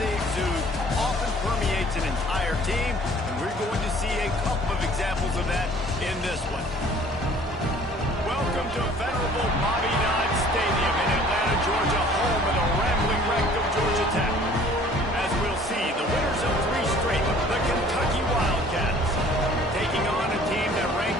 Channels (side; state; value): both; normal; correlation 0.53